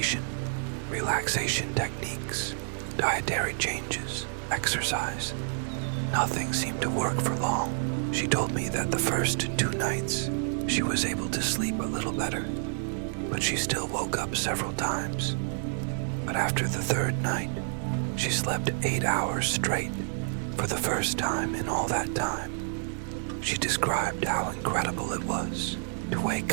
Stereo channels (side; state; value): left; silent; 58 dB below the other